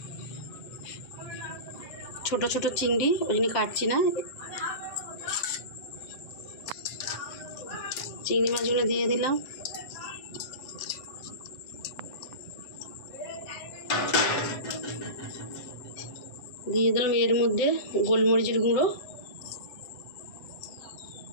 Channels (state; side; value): late; right; 7.6 ms